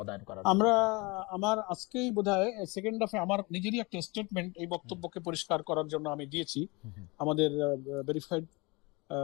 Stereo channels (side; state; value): right; quieter; 26.1 dB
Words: করা? আমার আজকেই বোধহয় সেকেন্ড হাফে আমার নিজেরই একটা স্টেটমেন্ট এই বক্তব্যকে পরিষ্কার করার জন্য আমি দিয়েছি, আমাদের ভেরিফাইড